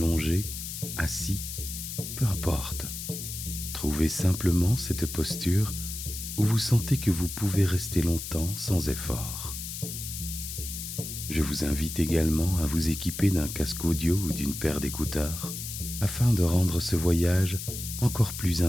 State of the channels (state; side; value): noise; left; hiss, 7 dB below the sound